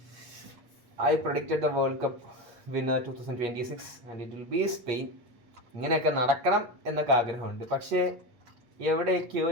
I predicted the World Cup winner 2026 and it will be Spain. ഇങ്ങനെയൊക്കെ നടക്കണം എന്നൊക്കെ ആഗ്രഹമുണ്ട്. പക്ഷേ എവിടെയൊക്കെയോ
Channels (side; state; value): left; late; 8.4 ms